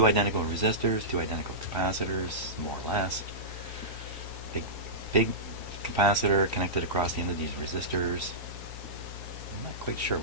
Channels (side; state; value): both; normal; correlation -0.16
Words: identical resistors, 2 identical capacitors, more or less. Big capacitor connected across the end of these resistors. I'm not quite sure